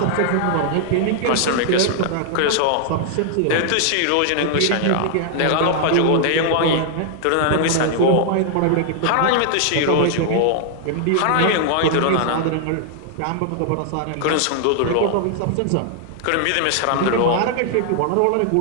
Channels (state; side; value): different; both; correlation 0.00